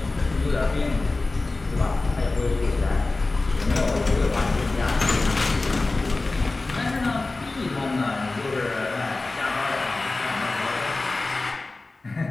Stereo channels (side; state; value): right; quieter; 3.3 dB